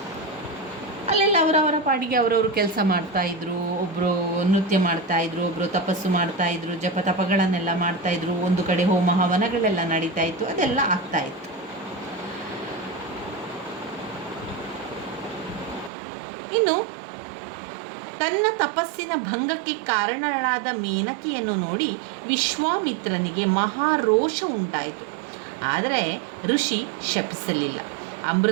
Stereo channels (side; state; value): left; drops out; at 15.9 s